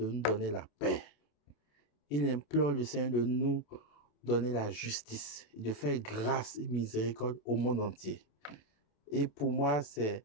nous donner la paix. Il implore le Seigneur de nous donner la justice, de faire grâce et miséricorde au monde entier. Et pour moi, c'est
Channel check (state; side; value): late; right; 28 ms